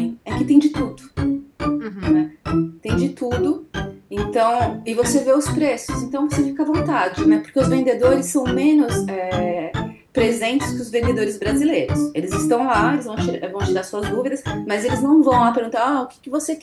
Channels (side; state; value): both; identical; correlation 1.00